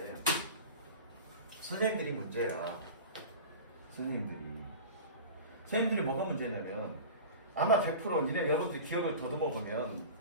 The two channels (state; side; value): inverted; both; correlation -0.34